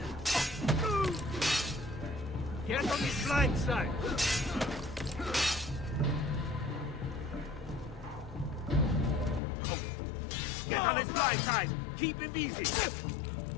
Get on his blind side! Get on his blind side! Keep him busy!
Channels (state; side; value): drops out; right; at 9.4 s